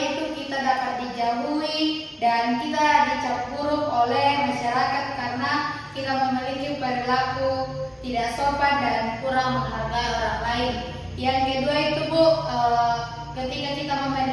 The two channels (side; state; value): both; identical; correlation 1.00